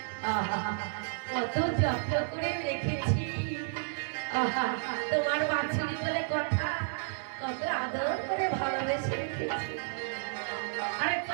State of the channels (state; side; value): silent; left; digital silence